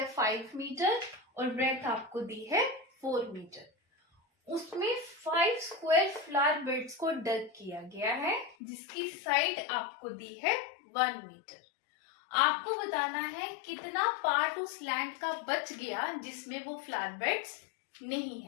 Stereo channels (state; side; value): drops out; right; at 8.6 s